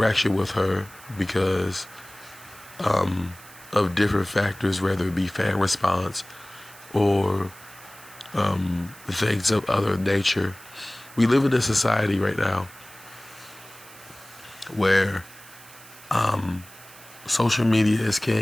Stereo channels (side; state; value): right; noise; hiss, 20 dB below the sound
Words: with her because of different factors, whether it be fan response or things of other nature. We live in a society right now where social media is